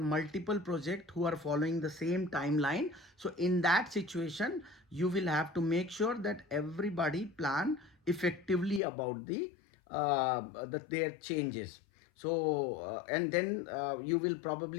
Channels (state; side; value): drops out; right; at 8.8 s